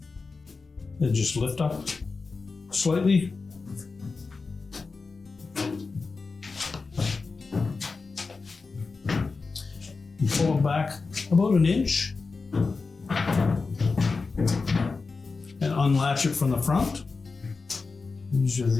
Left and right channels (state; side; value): quieter; right; 4.3 dB